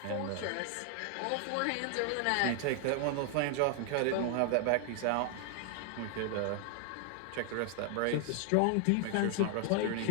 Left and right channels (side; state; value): both; different; correlation 0.00